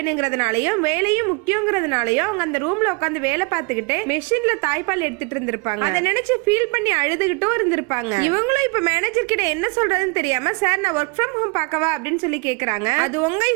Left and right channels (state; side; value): quieter; left; 29.9 dB